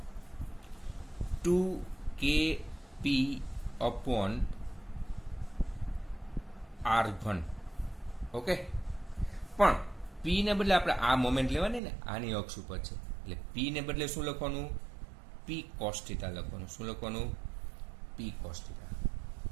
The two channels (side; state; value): left; drops out; at 11.8 s